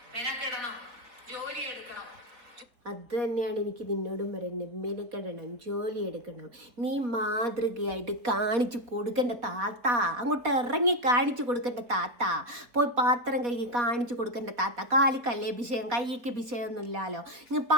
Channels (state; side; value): late; left; 4.1 ms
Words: മെനക്കെടണം, ജോലി എടുക്കണം. അത് തന്നെയാണ് എനിക്ക് നിന്നോടും പറയുന്നത്. മെനക്കെടണം, ജോലി എടുക്കണം. നീ മാതൃകയായിട്ട് കാണിച്ചു കൊടുക്കേണ്ട താത്ത. അങ്ങോട്ട് ഇറങ്ങി കാണിച്ചു കൊടുക്കേണ്ട താത്ത. പോയി പാത്രം കൈ കാണിച്ചു കൊടുക്കേണ്ട താത്ത. കാലിക്കല്ലേ വിഷയം, കൈക്ക് വിഷയമൊന്നും ഇല്ലല്ലോ. ഇങ്ങ്